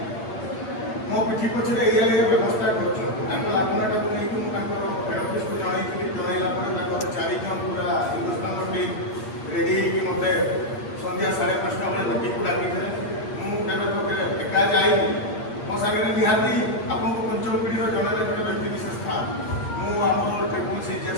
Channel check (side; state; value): right; late; 8.7 ms